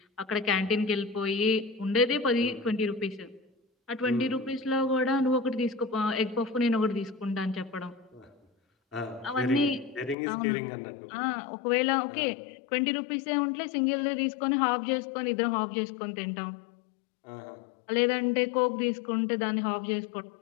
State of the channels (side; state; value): right; drops out; at 10.2 s